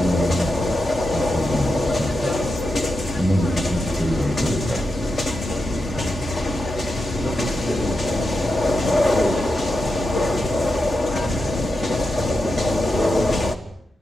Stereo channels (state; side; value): normal; both; correlation 0.88